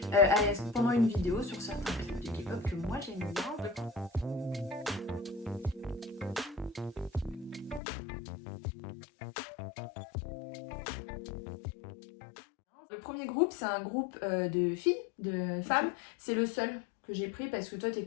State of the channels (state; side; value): drops out; right; at 7.8 s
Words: pendant une vidéo sur certains clips de K-pop que moi j'aime bien. Le premier groupe, c'est un groupe de filles, de femmes. Okay. C'est le seul que j'ai pris parce que toi,